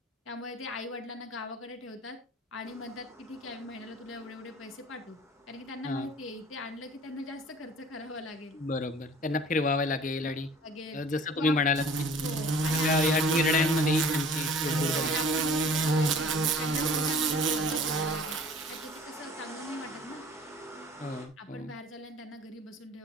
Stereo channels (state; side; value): normal; both; correlation 0.48